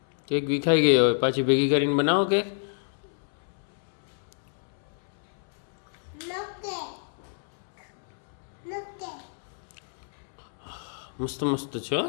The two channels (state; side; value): silent; right; 59 dB below the other